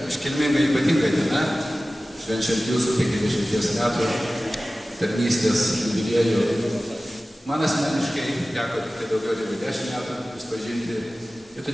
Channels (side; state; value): both; normal; correlation 0.96